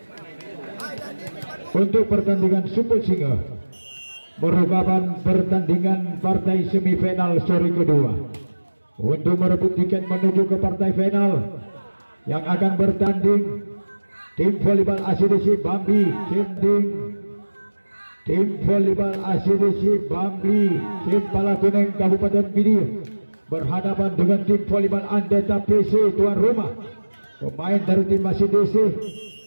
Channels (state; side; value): inverted; both; correlation -1.00